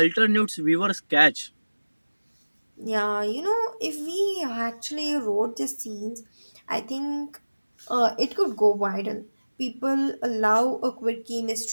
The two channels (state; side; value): inverted; both; correlation -1.00